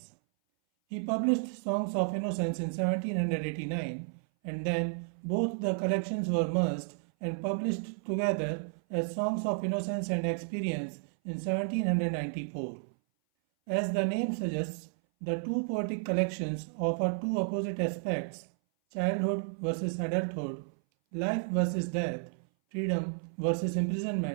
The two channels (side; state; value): left; silent; 56 dB below the other